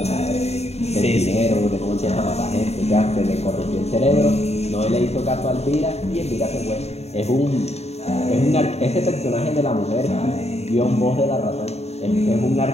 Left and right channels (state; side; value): late; right; 0.31 ms